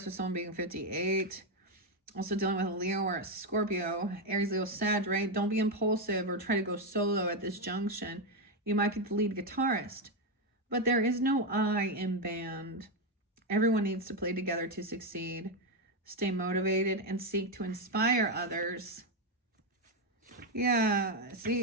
with someone being 58. Also dealing with a Leo or a Scorpio. Aries, Leo, Sag, right? Don't be impulsive or try to go solo at this junction. You might be the lead guitarist, but there is no I in band. Everyone needs to play together to succeed. Stay motivated and seek to inspire others. Yeah,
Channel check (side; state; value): both; normal; correlation 0.06